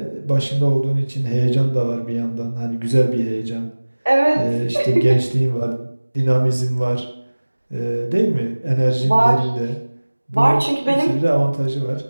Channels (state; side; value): inverted; both; correlation -1.00